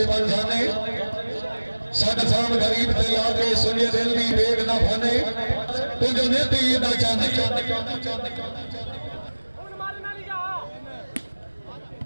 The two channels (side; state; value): both; inverted; correlation -1.00